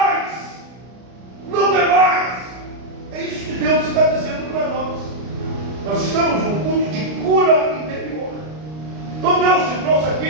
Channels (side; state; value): left; late; 33 ms